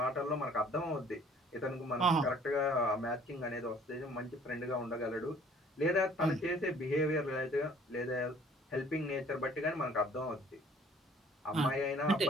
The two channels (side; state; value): both; normal; correlation 0.55